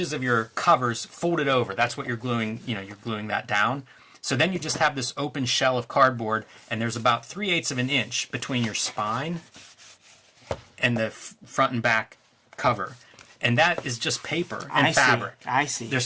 of your covers folded over. That's what you're gluing, you're gluing that down. So then you just have this open shell of cardboard, and there's about 3/8 of an inch between your spine and the front and back cover. And that is just paper and fabric. I see.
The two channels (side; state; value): both; identical; correlation 1.00